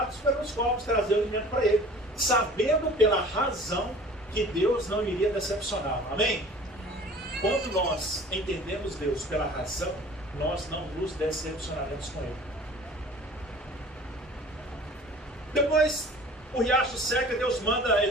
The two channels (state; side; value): normal; both; correlation 0.45